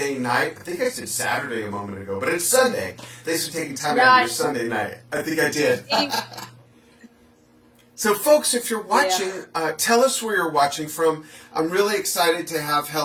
night. I think I said Saturday a moment ago, but it's Sunday. Thanks for taking time out of your Sunday night. I think I did. So, folks, if you're watching, tell us where you're watching from. I'm really excited to have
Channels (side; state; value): both; identical; correlation 1.00